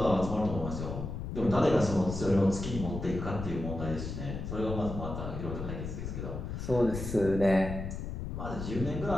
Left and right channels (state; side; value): noise; left; rumble, 6 dB below the sound